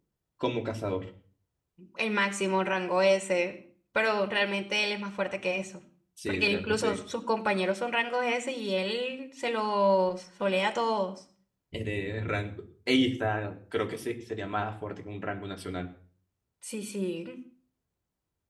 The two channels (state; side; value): identical; both; correlation 1.00